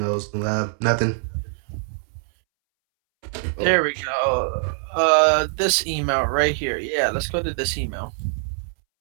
Nothing. There we go. This email right here. Yeah, let's go to this email.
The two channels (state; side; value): silent; left; 63 dB below the other